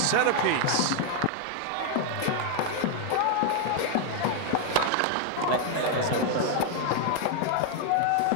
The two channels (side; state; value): both; different; correlation 0.00